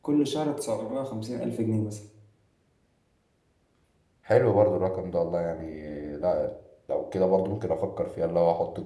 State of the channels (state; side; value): identical; both; correlation 1.00